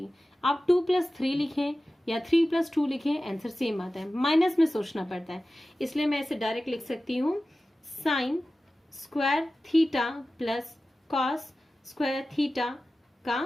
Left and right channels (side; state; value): both; normal; correlation 0.95